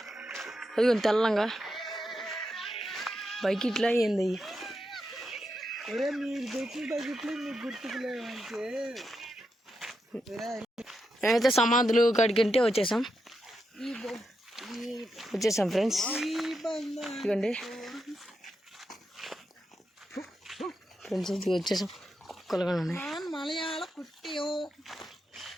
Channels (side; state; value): both; normal; correlation 0.85